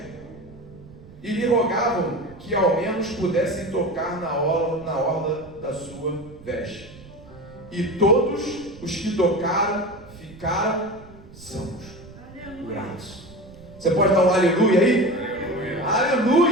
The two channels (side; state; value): right; noise; rumble, 20 dB below the sound